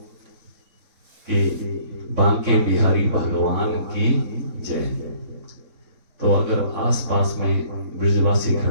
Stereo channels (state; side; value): late; left; 4.0 ms